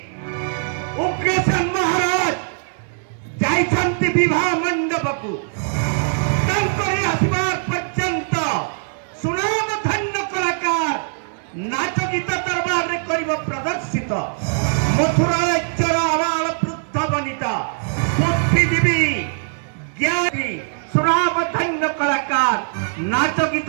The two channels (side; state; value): left; silent; 65 dB below the other